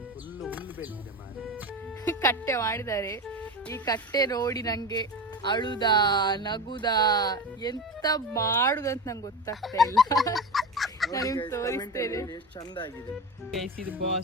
ಕಟ್ಟೆ ಮಾಡಿದ್ದಾರೆ. ಈ ಕಟ್ಟೆ ನೋಡಿ ನಂಗೆ ಅಳುದಾ ನಗುದಾ ಎಂತ ಮಾಡುದಂತ ನಂಗೆ ಗೊತ್ತಾಗ್ತಾ ಇಲ್ಲ. ನಾನು ತೋರಿಸ್ತೇನೆ. ಗೈಸ್ ಇದು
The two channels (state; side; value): normal; both; correlation 0.24